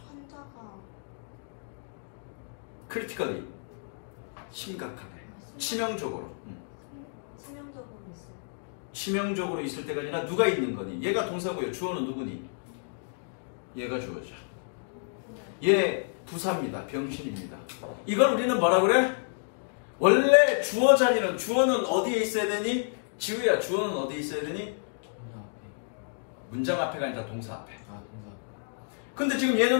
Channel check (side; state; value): right; silent; digital silence